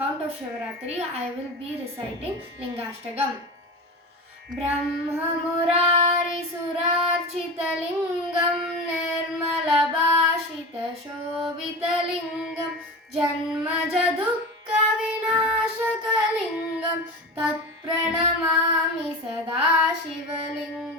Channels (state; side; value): normal; both; correlation 0.27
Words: of Shivaratri, I will be reciting Lingashtakam. Brahmamurari Surarchitalingam Nirmalabhashitashobhitalingam Janmajadukka Vinashakalingam Tatpranamami